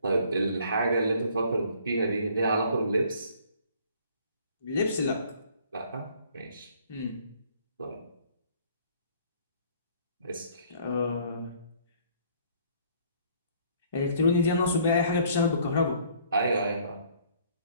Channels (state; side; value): inverted; both; correlation -0.59